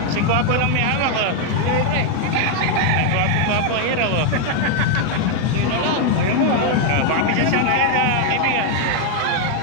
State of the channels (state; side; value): different; both; correlation 0.00